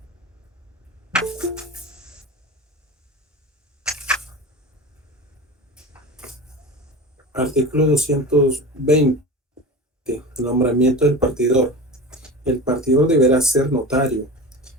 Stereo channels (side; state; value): both; normal; correlation 0.30